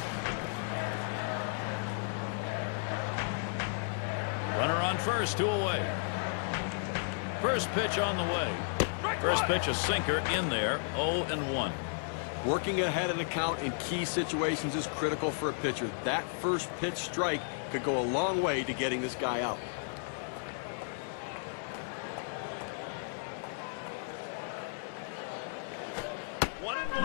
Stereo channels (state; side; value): silent; right; 55 dB below the other